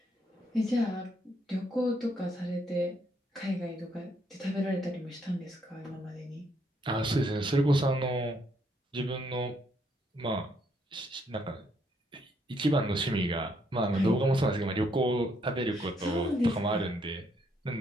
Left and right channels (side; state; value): both; normal; correlation 0.72